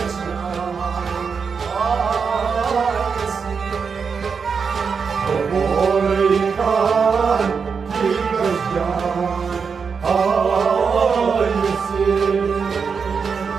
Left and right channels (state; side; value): quieter; left; 5.8 dB